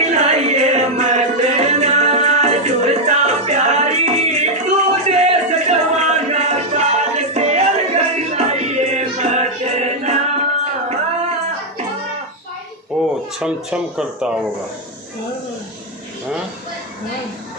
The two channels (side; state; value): both; normal; correlation 0.00